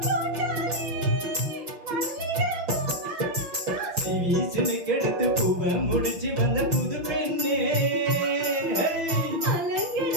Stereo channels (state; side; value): late; left; 5.9 ms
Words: வீசுன்னு கெடுத்து பூவை முடிச்சு வந்த புது பெண்ணே